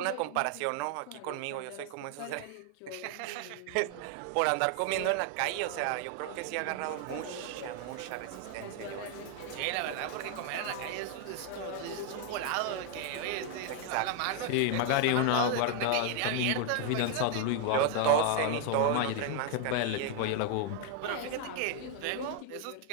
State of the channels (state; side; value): different; both; correlation 0.00